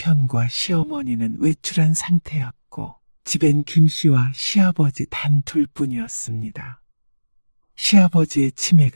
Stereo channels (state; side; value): inverted; both; correlation -1.00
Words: 시어머니는 외출한 상태였고 집엔 김 씨와 시아버지 단 둘뿐이었습니다. 시아버지의